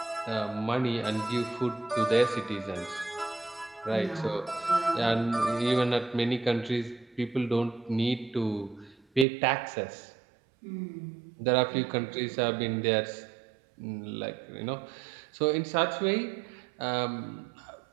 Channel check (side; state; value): left; drops out; at 9.2 s